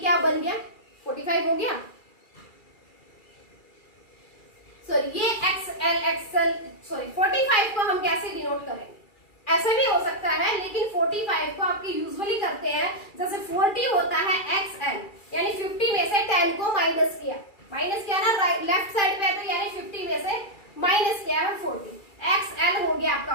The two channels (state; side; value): late; right; 2.3 ms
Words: बन गया, 45 हो गया। सॉरी, ये XL 45 को हम कैसे डिनोट करेंगे, ऐसा भी हो सकता है, लेकिन 45 को आपके यूजुअली करते हैं, जैसे 40 होता है XL, यानी 50 में से 10 को माइनस किया ना, लेफ्ट साइड पे, तो यानी 50 में से माइनस किया है 40। XL हो गया